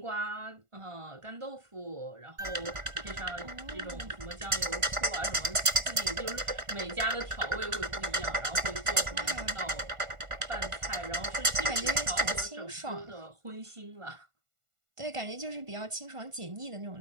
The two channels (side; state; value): left; late; 1.5 ms